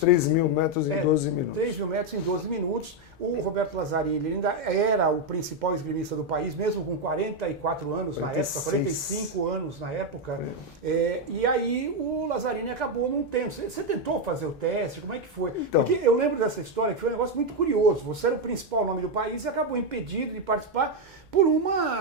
3.000 metros em 12 minutos. 3.000 metros em 12 minutos. O Roberto Lazzarini ele ainda era o principal esgrimista do país, mesmo com 44 anos 46. Na época, 45 anos na época. E aí o Lazzarini acabou não tendo. Você tentou fazer o teste? Como é que foi? Então, porque eu lembro dessa história que foi um negócio muito curioso. Você era o principal nome do país e acabou impedido de participar por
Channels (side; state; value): both; normal; correlation 0.04